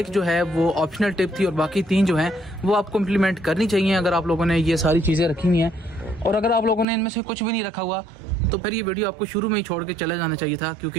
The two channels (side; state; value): left; drops out; at 6.9 s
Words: जो है वो ऑप्शनल टिप थी और बाकी 3 जो हैं वो आपको इम्प्लीमेंट करनी चाहिए अगर आप लोगों ने ये सारी चीज़ें रखी हुई हैं। और अगर आप लोगों ने इनमें से कुछ भी नहीं रखा हुआ तो फिर ये वीडियो आपको शुरू में ही छोड़ के चले जाना चाहिए था,